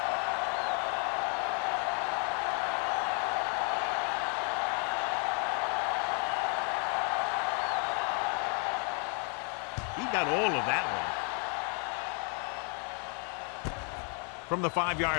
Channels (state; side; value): quieter; right; 40.0 dB